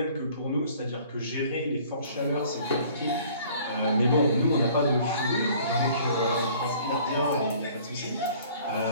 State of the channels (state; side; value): inverted; both; correlation -0.53